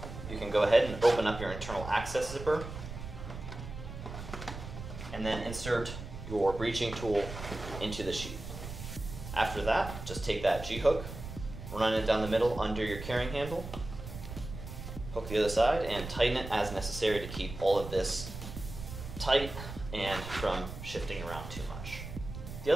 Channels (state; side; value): noise; right; rumble, 10 dB below the sound